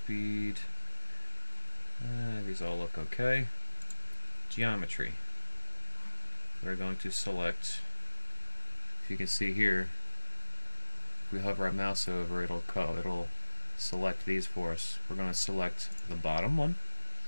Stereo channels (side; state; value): both; inverted; correlation -1.00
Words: These all look okay. Geometry. We're going to select, if you can see here, if we hover our mouse over, it'll select these for us. We're going to select the bottom one.